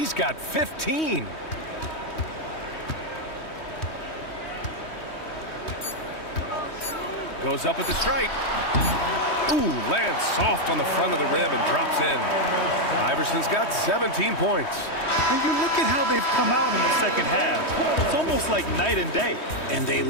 got 15. Goes up at the stripe. Ooh, lands soft on the front of the rim and drops in. Iverson's got 17 points. And you look at how they've come out in the second half. It's almost like night and day. And they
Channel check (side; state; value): right; late; 3.2 ms